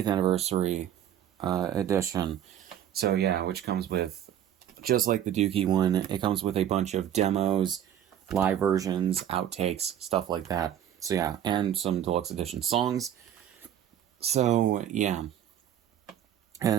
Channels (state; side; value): quieter; left; 10.5 dB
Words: anniversary, edition. So yeah, which comes with, just like the Dookie one, it comes with a bunch of demos, live versions, outtakes, stuff like that. So yeah, and some deluxe edition songs. So, yeah.